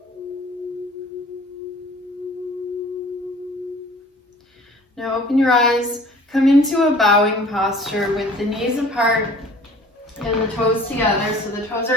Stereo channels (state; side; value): normal; both; correlation 0.49